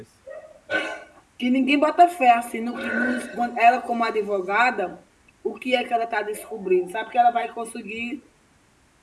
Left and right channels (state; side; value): identical; both; correlation 1.00